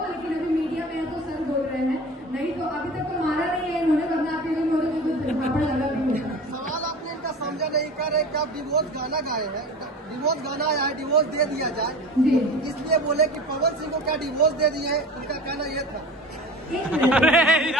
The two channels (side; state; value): both; normal; correlation 0.36